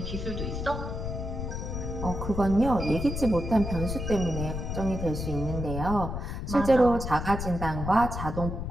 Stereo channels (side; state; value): left; noise; rumble, 4 dB below the sound